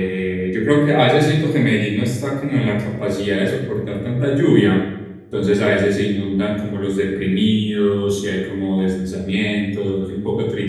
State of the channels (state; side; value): identical; both; correlation 1.00